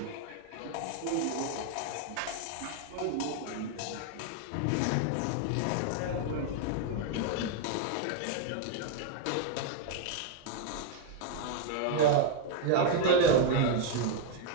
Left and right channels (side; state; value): both; different; correlation 0.00